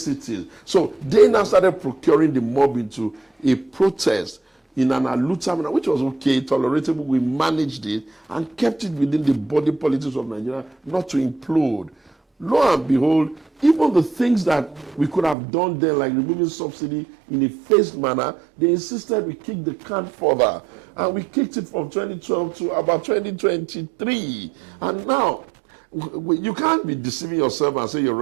So they now started procuring the mob into a protest in an alluta manner, which was okay, tolerable. We managed it and kept it within the body politics of Nigeria, not to implode. Lo and behold, even the things that we could have done then, like removing subsidy in a phased manner, they insisted we kick the can further. And we kicked it from 2012 to about 2023. And now, you can't be deceiving yourself and say you're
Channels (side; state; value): left; drops out; at 15.4 s